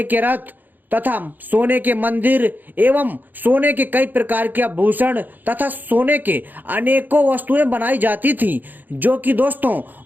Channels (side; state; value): left; late; 0.087 ms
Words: के रथ तथा सोने के मंदिर एवं सोने के कई प्रकार के आभूषण तथा सोने के अनेकों वस्तुएं बनाई जाती थी, जो कि दोस्तों